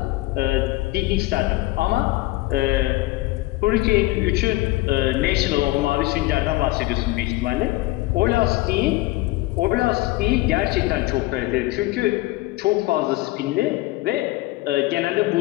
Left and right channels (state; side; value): quieter; right; 19.2 dB